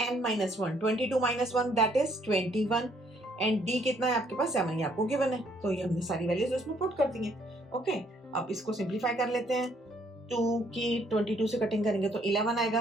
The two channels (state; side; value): normal; both; correlation 0.67